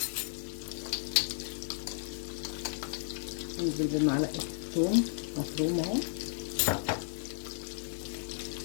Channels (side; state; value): right; silent; digital silence